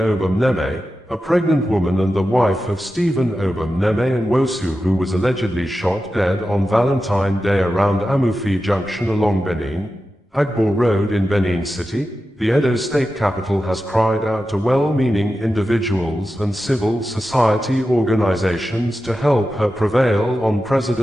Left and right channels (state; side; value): normal; both; correlation 0.92